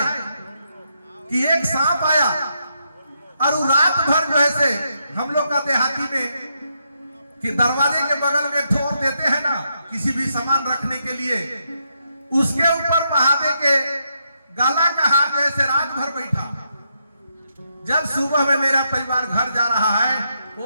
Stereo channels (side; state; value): both; inverted; correlation -0.80